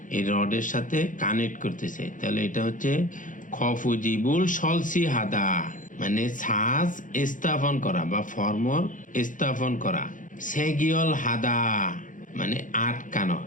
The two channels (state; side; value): late; right; 0.38 ms